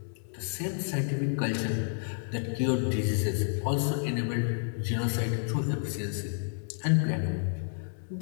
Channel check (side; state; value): right; silent; 58 dB below the other